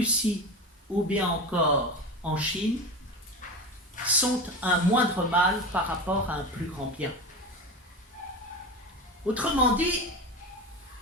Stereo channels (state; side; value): normal; both; correlation 0.25